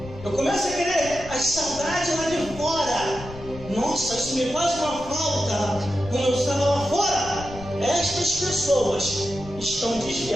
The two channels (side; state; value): left; noise; rumble, 14 dB below the sound